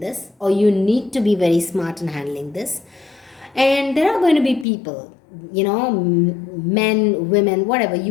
or you need to be very smart in handling this. And there are going to be people, men, women, whatever.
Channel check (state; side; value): drops out; right; at 4.7 s